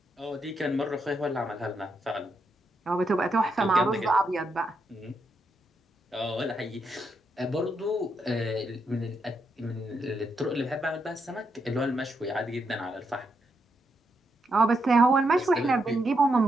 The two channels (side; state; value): both; normal; correlation 0.80